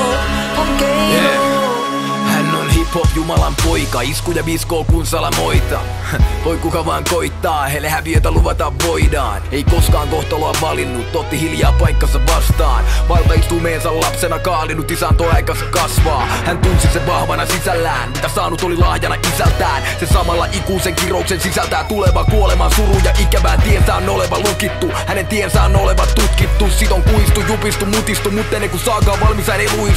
kun keino. Hän on hip-hop Jumalan poika, iskuja viskoo kun salamoita. Voi kuka vaan koittaa, heille häviötä luvata voidaan. Ei koskaan kohtaloa valinnut, otti hiljaa paikkansa vastaan. Valtaistumeensa lapsena kaalinut, isänto aikansa kasvaa. Hän tunsi sen vahvana sisällään, mitä saanut oli lahjana isältään. Se samalla ikuisen kirouksen sisältää tuleva kuoleman suru ja ikävään tiensä on oleva lukittu. Hänen tiensä on oleva tutkittu, sit on kuistu, jupistu, mutistu, mutta ennen kuin saakaan valmis hän ei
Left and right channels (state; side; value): identical; both; correlation 1.00